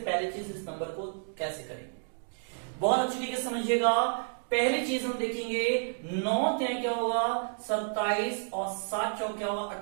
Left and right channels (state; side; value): silent; left; digital silence